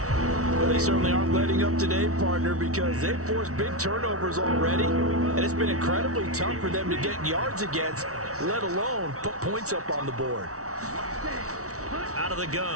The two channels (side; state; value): left; late; 0.65 ms